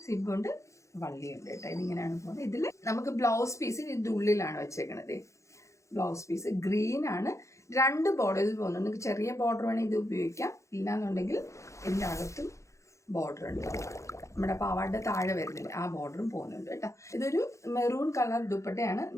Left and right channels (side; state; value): right; late; 0.15 ms